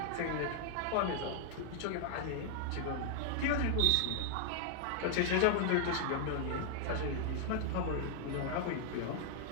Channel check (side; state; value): both; different; correlation 0.00